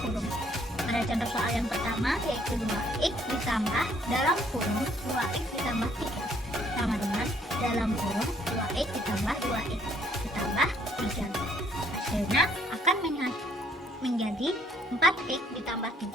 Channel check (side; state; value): both; normal; correlation 0.65